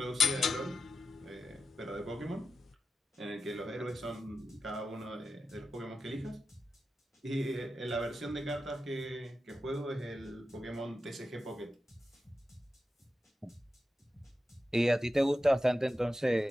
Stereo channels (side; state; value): both; normal; correlation 0.91